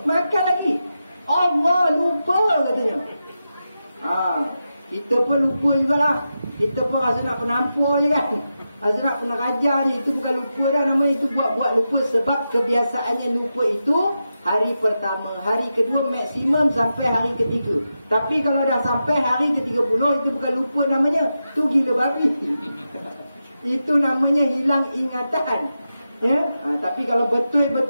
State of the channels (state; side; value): inverted; both; correlation -0.89